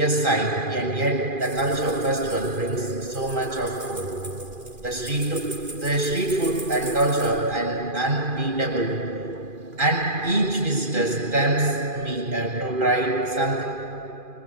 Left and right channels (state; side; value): late; left; 2.4 ms